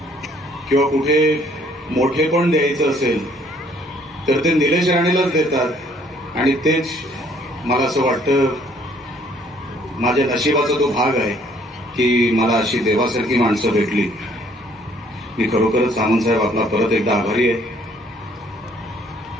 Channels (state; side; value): normal; both; correlation 0.62